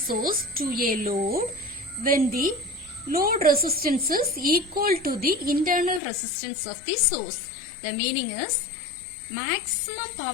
to a load when the load resistance is equal to the internal resistance of the source. The meaning is maximum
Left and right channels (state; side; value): drops out; right; at 6.0 s